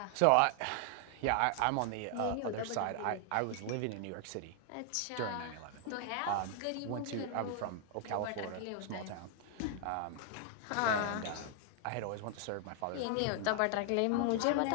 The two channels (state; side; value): different; both; correlation 0.00